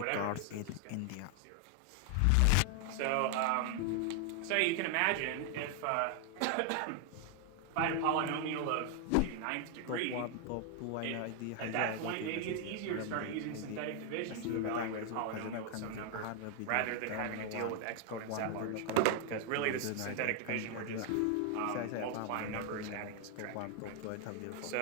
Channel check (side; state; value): both; different; correlation 0.00